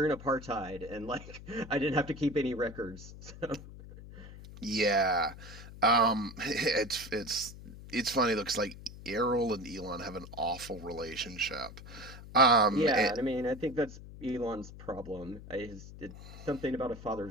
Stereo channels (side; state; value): left; noise; hum, 15 dB below the sound